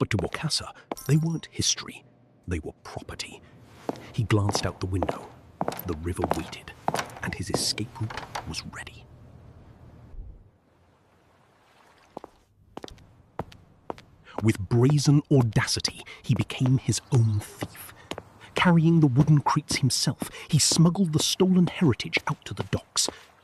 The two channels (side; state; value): both; identical; correlation 1.00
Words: to Bokassa, they weren't history, they were property. He glanced out the window. The river waited, and his escape route was ready. With brazen audacity, he became his own thief. Carrying the wooden crates himself, he smuggled the stolen heritage out to the docks.